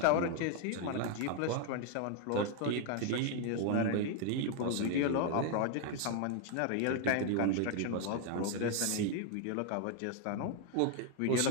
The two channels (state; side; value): different; both; correlation 0.00